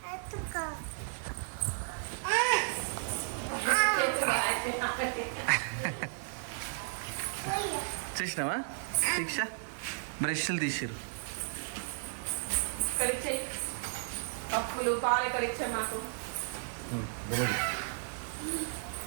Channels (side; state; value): left; silent; digital silence